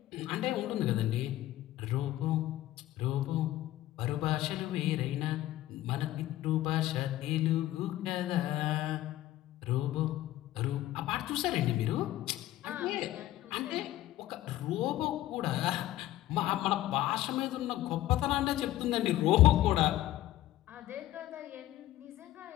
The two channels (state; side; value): quieter; right; 14.7 dB